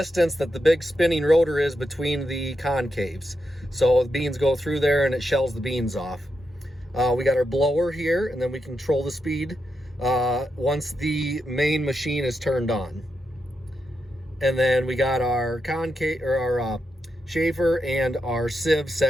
that the big spinning rotor is between the concaves. So the beans go through there and it shells the beans off. We got our blower here, and then we control the speed once the main machine is turned on. And then we got our concave, or our Schaefer and our sieve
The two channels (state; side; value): normal; both; correlation 0.85